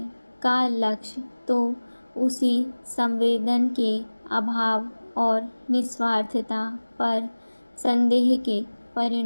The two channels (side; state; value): both; inverted; correlation -1.00